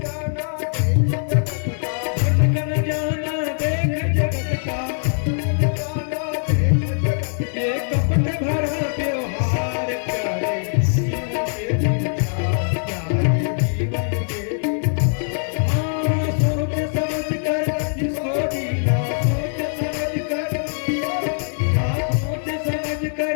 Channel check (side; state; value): right; silent; 63 dB below the other